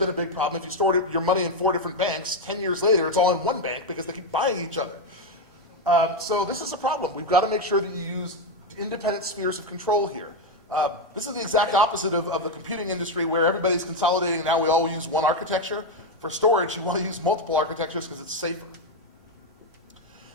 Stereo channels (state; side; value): normal; both; correlation 0.06